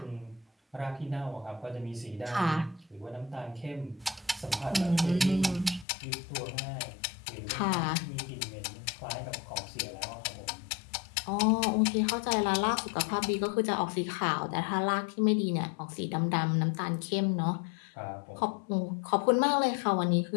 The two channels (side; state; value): right; drops out; at 5.9 s